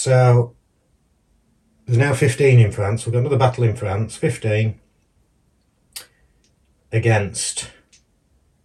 there's now 15 in France. We've got another battle in France. 15 against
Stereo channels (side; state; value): both; identical; correlation 1.00